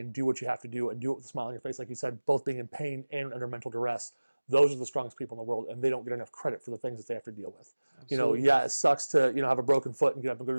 do what you have to do, and do it with a smile on your face, like you said, both being in pain and under mental duress, those are the strongest people in the world, and they don't get enough credit for the things that they have to deal with. Absolutely. Yeah, it sucks to, have a broken foot and get up and go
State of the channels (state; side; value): inverted; both; correlation -1.00